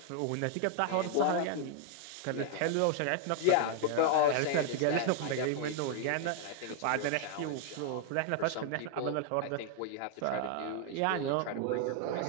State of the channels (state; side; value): different; both; correlation 0.00